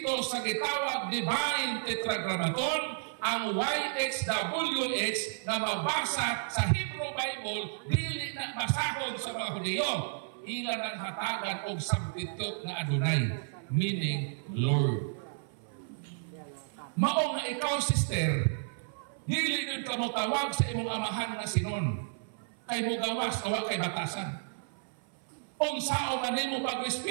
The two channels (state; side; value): silent; left; 56 dB below the other